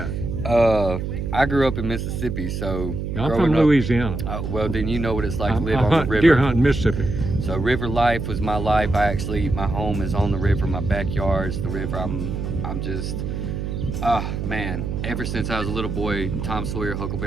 I grew up in Mississippi, so I'm from Louisiana. Well, then you know what it's like to live on the river. Deer hunting, Mississippi. So river life was my life. My home is on the river. My backyard's the river. I'm just, man. Ever since I was a little boy, Tom Sawyer,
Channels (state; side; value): noise; right; hum, 3 dB below the sound